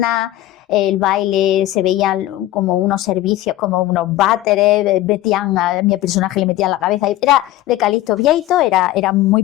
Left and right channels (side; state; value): right; quieter; 14.8 dB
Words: El baile se veían como unos servicios, como unos váteres, a mi personaje le metían la cabeza. Era de Calixto Vieito, era muy